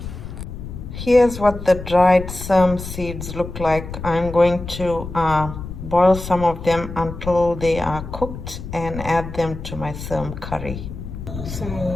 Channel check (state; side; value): noise; left; rumble, 9 dB below the sound